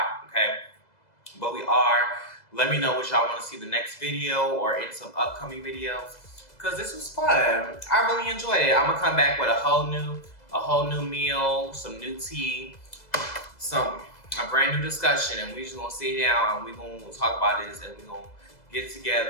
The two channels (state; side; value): late; right; 2.0 ms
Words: okay? But we are. Let me know what y'all want to see the next video or in some upcoming videos, because this was fun. I really enjoyed it. I'm going to come back with a whole new meal, some new tea, a brand new discussion, and we just gonna sit down and we gonna talk about this, and we gonna get